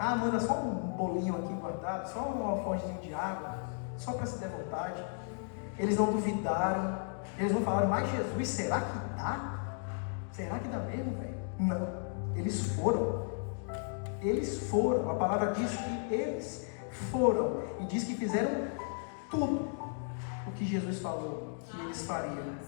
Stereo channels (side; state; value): right; silent; 55 dB below the other